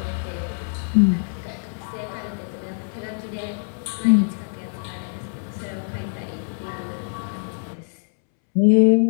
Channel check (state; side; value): silent; right; 63 dB below the other